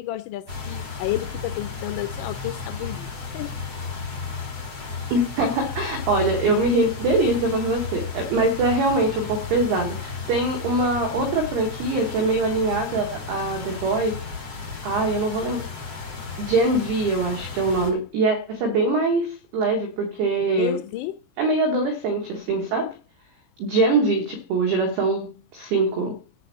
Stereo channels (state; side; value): late; left; 7.7 ms